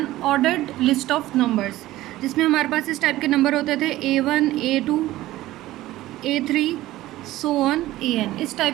ordered list of numbers जिसमें हमारे पास इस टाइप के नंबर होते थे A1, A2, A3 so on AN. इस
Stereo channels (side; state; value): left; quieter; 16.1 dB